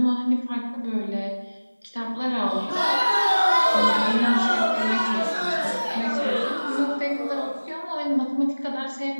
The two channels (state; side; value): inverted; both; correlation -1.00